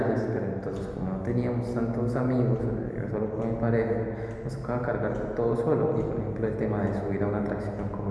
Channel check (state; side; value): identical; both; correlation 1.00